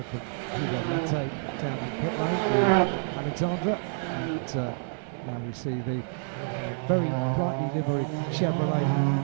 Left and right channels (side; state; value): left; silent; digital silence